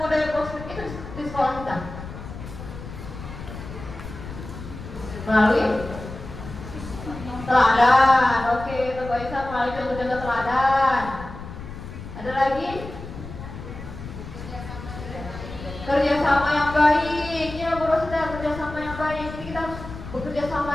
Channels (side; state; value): left; noise; rumble, 11 dB below the sound